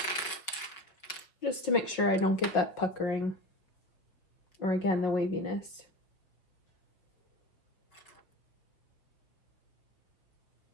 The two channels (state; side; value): late; right; 5.0 ms